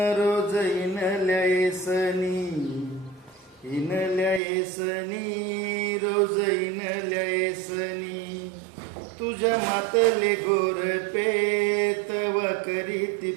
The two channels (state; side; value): drops out; left; at 4.4 s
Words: रोज इनल्या येसनी, इनल्या येसनी रोज इनल्या येसनी, तुझ्या मातले गोरपे तवा करीती